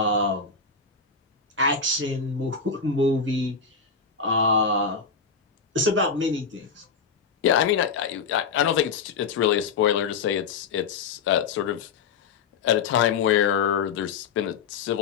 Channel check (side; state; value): right; quieter; 5.5 dB